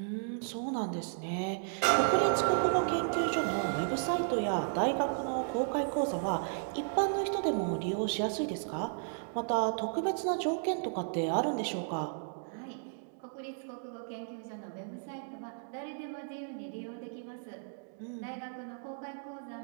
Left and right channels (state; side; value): silent; left; digital silence